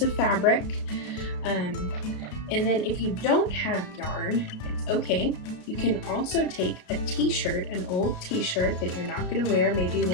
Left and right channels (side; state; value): right; late; 33 ms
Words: of fabric. And then if you don't have yarn, it's okay. You can also take a t-shirt, an old t-shirt that you're not going to wear, maybe